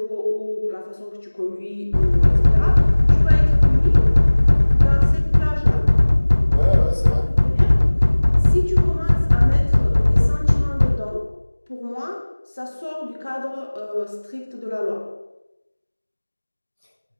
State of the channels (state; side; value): inverted; both; correlation -1.00